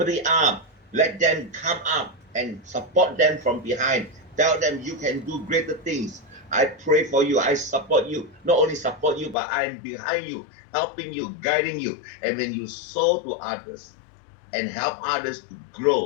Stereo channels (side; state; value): right; drops out; at 9.3 s